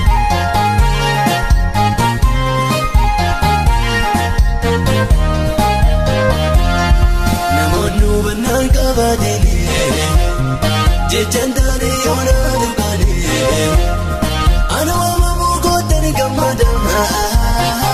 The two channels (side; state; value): both; identical; correlation 1.00